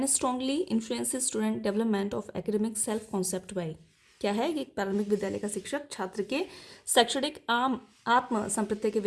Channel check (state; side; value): identical; both; correlation 1.00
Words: strongly influence student development of academic self concept by. क्या है कि एक प्रारंभिक विद्यालय का शिक्षक छात्र के शैक्षणिक आत्म संप्रत्यय के